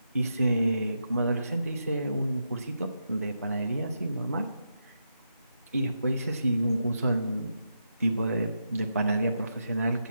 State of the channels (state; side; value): inverted; both; correlation -0.84